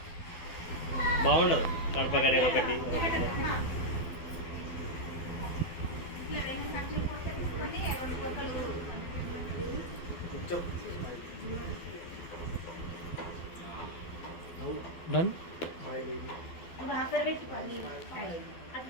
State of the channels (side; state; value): right; late; 12 ms